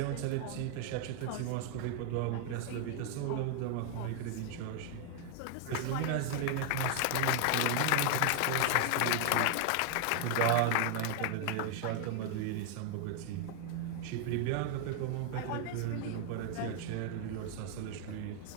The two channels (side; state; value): both; different; correlation 0.00